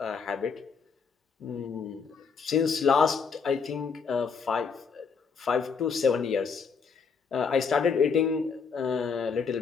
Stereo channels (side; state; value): right; quieter; 5.7 dB